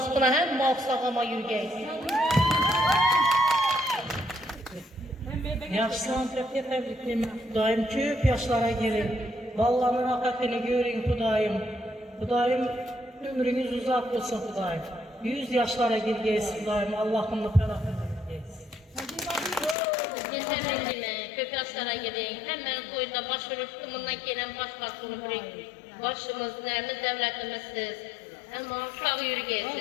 hem sağlama yürgeysiz. Yaşlan tebrikleme. Xudoyim köp yaşlara gelin. Ballarni rohatini görün Xudoyim. Xudoyim ömrünüz uzak olsun Xudoyim. 100 yaşlara girgeysiz Xudoyim. Allah'ımla ferahını yürgeysiz. Yeterli köp yaşlara gidin. Hemen koyunda başvurup tımından gelen başbakan olup başımız, neyimiz, devletimizsiz. Ama sağ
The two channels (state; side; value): drops out; right; at 19.8 s